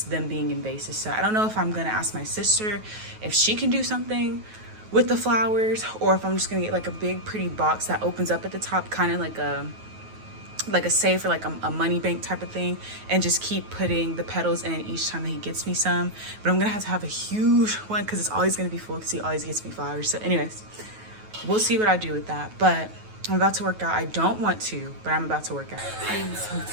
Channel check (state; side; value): late; left; 9.3 ms